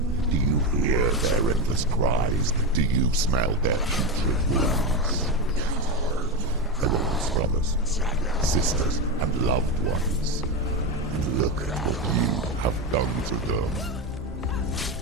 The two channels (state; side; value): normal; both; correlation 0.14